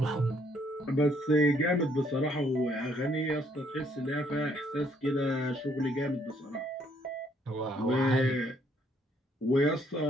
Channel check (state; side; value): normal; both; correlation 0.67